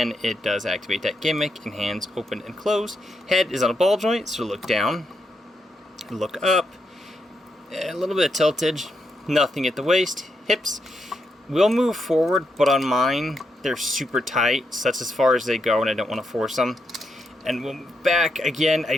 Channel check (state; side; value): normal; both; correlation 0.82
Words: it does activate that gimmick, and hands open and close. Head is on a ball joint, so look down, look up, a little bit of tiltage, nothing at the waist. Hips will move forward, but on mine, they're super tight, so that's as far as they go, and I don't want to force them. And we'll move back, again, I